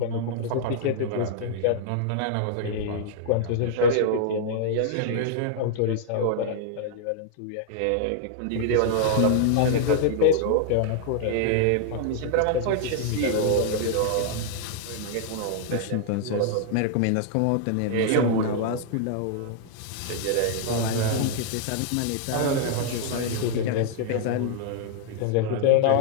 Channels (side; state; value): both; different; correlation -0.01